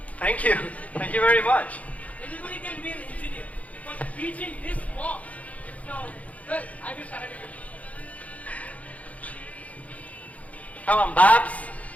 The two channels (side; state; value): right; late; 0.068 ms